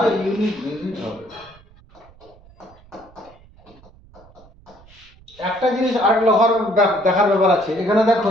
ইউনিট ডিজিট হবে। একটা জিনিস আর দেখার ব্যাপার আছে, এখানে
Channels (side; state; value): right; noise; rumble, 26 dB below the sound